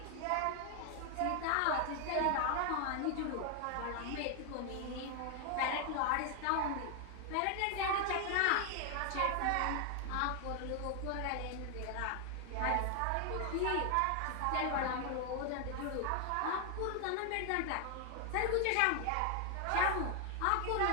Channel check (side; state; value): both; different; correlation 0.00